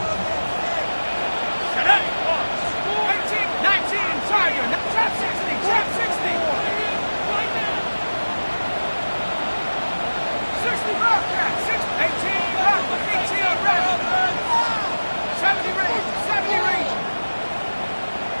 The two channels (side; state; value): both; inverted; correlation -1.00